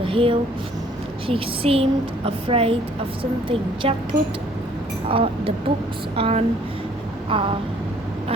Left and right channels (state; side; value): normal; both; correlation 0.59